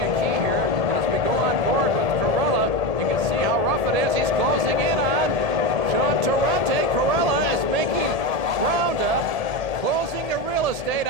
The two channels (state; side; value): late; left; 1.7 ms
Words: key here. As we go on board with Corolla, you can see how rough it is. He's closing in on Jean Torrente. Corolla is making ground up, closing the real estate